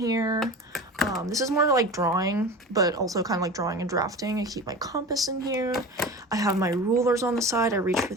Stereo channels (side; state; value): both; normal; correlation 0.33